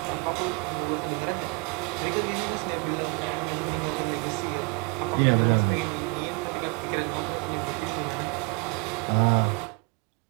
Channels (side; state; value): left; quieter; 28.9 dB